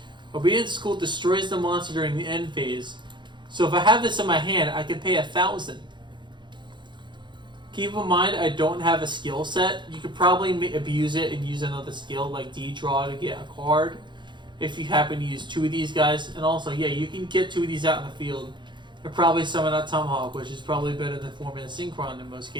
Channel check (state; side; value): late; left; 0.23 ms